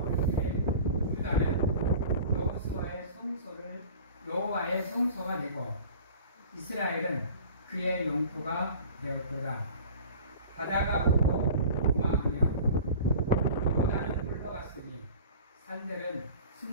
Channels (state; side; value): inverted; both; correlation -0.41